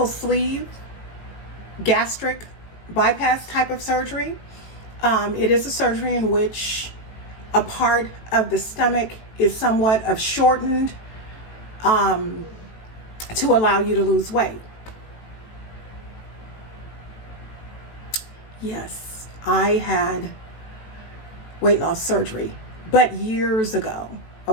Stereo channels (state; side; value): late; right; 18 ms